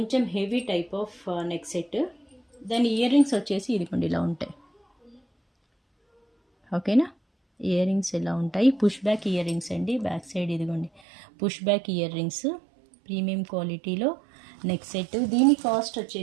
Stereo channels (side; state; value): left; drops out; at 11.0 s